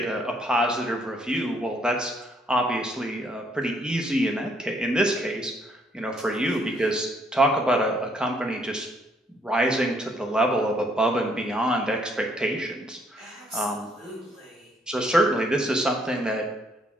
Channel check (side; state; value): both; normal; correlation 0.68